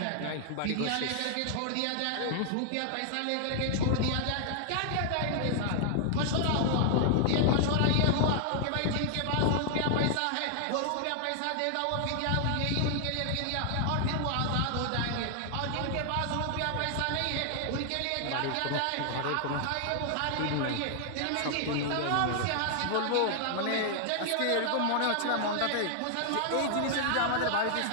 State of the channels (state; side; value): different; both; correlation 0.00